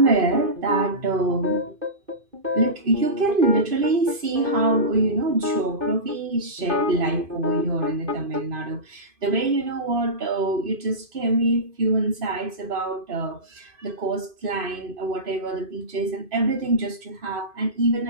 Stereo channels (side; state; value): left; late; 2.5 ms